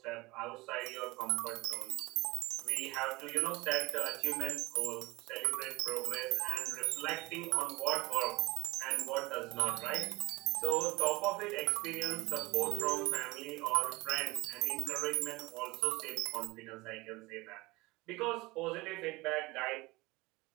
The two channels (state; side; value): quieter; left; 22.0 dB